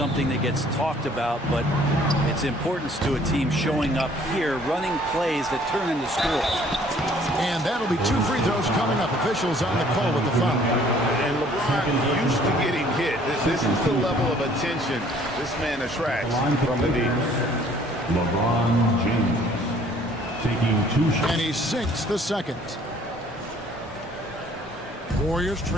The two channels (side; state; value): both; normal; correlation 0.57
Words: that gets talked about, but its importance to a team showing up here, running plays that turn into scores. And that'll be 2 free throws coming up. Officials on the call with the foul. And LeBron used to getting hit. This is the level of attention this man attracts from the defense. LeBron James. Taking 2 shots. And he sinks the second. Warriors